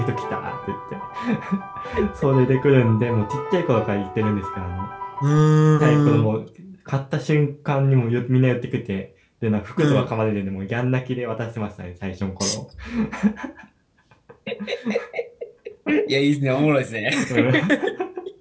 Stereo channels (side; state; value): both; identical; correlation 1.00